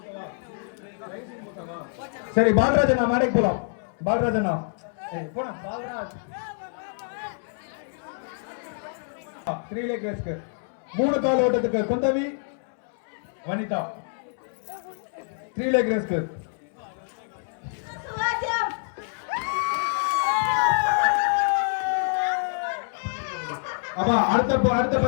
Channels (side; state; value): right; silent; 61 dB below the other